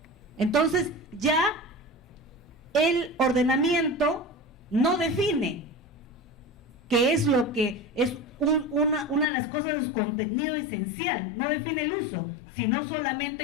Entonces ya el ordenamiento no define qué es lo que es una de las cosas de su contenido esencial, no define el uso, sino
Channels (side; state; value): right; drops out; at 9.2 s